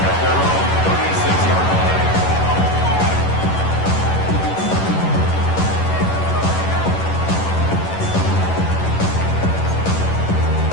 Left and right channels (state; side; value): late; right; 11 ms